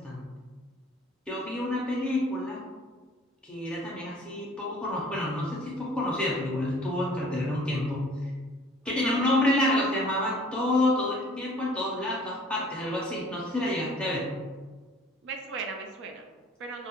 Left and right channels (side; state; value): both; normal; correlation 0.52